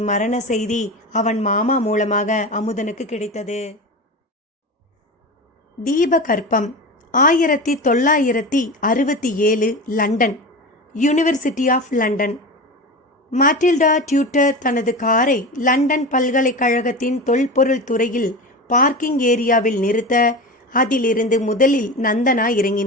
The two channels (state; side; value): normal; both; correlation 0.27